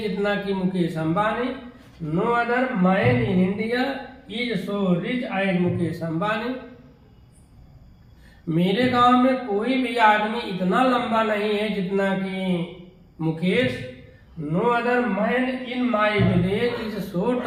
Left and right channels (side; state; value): both; identical; correlation 1.00